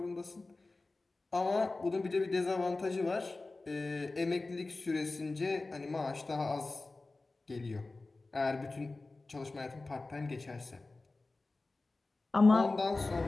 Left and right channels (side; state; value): right; quieter; 3.4 dB